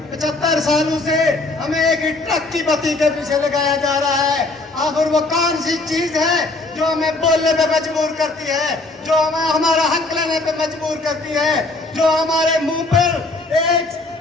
75 سالوں سے ہمیں ایک ٹرک کی بتی کے پیچھے لگایا جا رہا ہے، آخر وہ کون سی چیز ہے جو ہمیں بولنے پہ مجبور کرتی ہے، جو ہمیں ہمارا حق لینے پہ مجبور کرتی ہے، جو ہمارے منہ پر ایک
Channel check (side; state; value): right; quieter; 3.2 dB